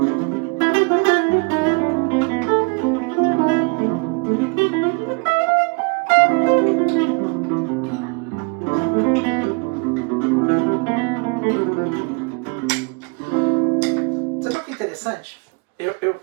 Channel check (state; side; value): quieter; left; 32.2 dB